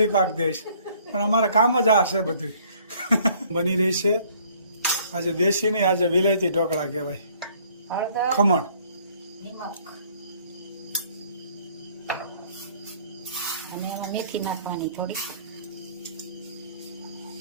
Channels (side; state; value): both; inverted; correlation -0.59